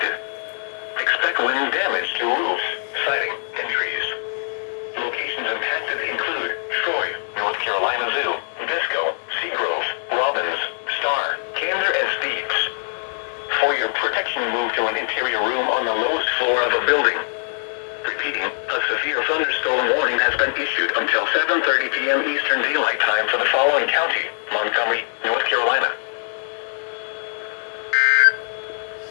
Expect wind damage to roofs, siding, and trees. Locations impacted include Troy, North Carolina Zoo, Bisco, Seagrove, Robbins, Star, Gander, and Steeves. For your protection, move to an interior room on the lowest floor of a building. Repeating, a severe thunderstorm warning has been issued until 7:30 p.m. Eastern Daylight Time for the following county: Montgomery, North Carolina.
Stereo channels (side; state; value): right; silent; 64 dB below the other